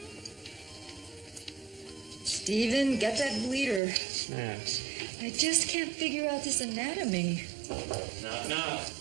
Stephen, get that bleeder. Snaps. I just can't figure out this anatomy. Knock, knock.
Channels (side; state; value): left; drops out; at 3.8 s